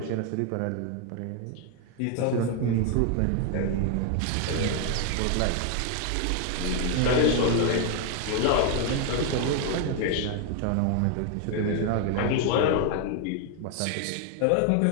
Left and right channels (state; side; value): different; both; correlation 0.00